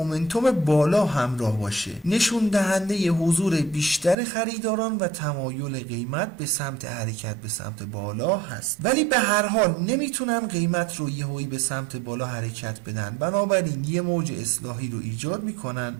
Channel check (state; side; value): drops out; left; at 4.2 s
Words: بالا همراه باشه، نشون دهنده حضور بیشتر خریداران و تمایل قیمت به سمت حرکت به سمت بالا هست. ولی به هر حال نمیتونن قیمت رو یهویی به سمت بالا حرکت بدن، بنابراین یه موج اصلاحی رو ایجاد میکنن